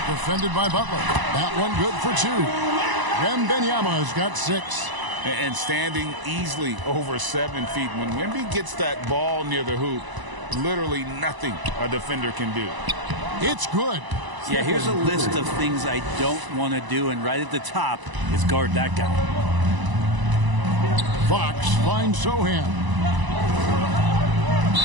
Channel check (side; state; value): left; late; 1.0 ms